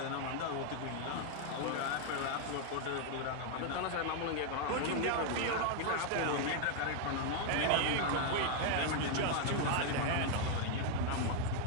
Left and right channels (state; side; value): different; both; correlation 0.00